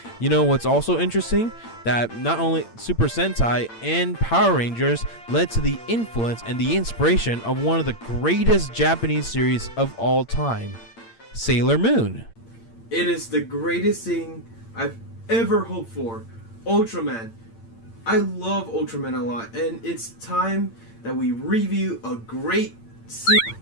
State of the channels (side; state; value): right; late; 8.8 ms